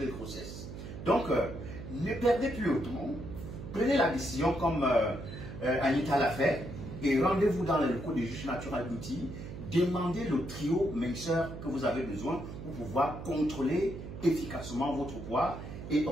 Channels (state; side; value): noise; right; hum, 10 dB below the sound